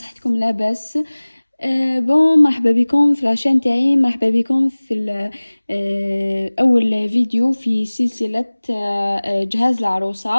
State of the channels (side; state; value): both; inverted; correlation -1.00